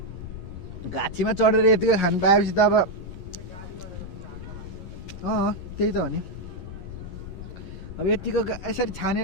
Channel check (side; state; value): right; late; 11 ms